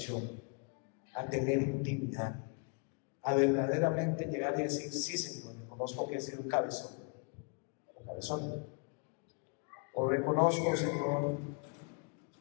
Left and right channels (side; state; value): right; quieter; 36.9 dB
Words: a tener intimidad, a verdaderamente llegar y decir: sí, Señor, reconozco que he sido un cabezón o cabezón, o reconozco, Señor,